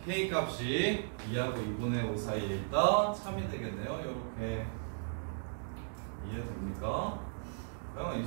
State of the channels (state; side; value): silent; left; digital silence